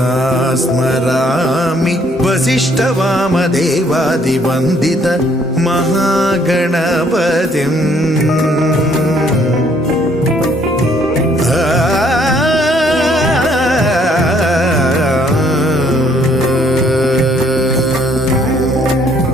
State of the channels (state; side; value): normal; both; correlation 0.65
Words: स्मरामि वसिष्ठवामदेवादिवन्दित महागणपतिम्